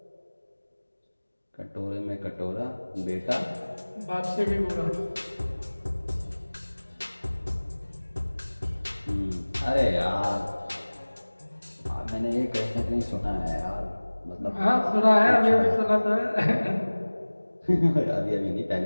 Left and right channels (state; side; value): inverted; both; correlation -1.00